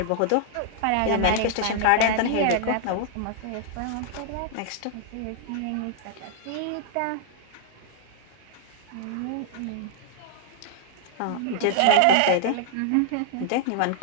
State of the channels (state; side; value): different; both; correlation -0.01